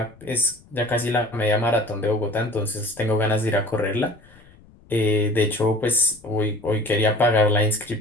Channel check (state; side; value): noise; left; rumble, 26 dB below the sound